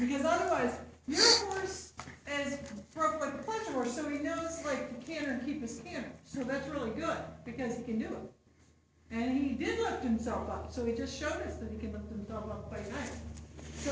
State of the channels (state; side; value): identical; both; correlation 1.00